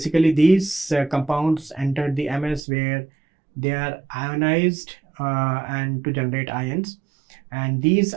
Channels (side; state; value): left; drops out; at 2.6 s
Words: these compounds enter the MS, where they are ionized and to generate ions, and these